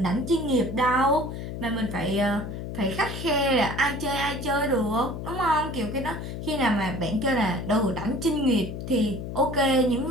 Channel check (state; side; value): noise; left; hum, 7 dB below the sound